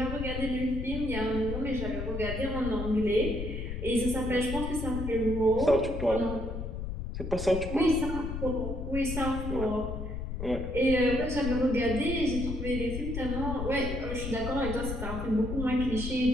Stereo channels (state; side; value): noise; left; rumble, 5 dB below the sound